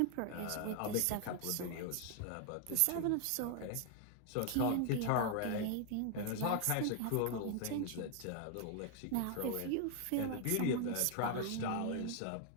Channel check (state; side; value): different; both; correlation 0.00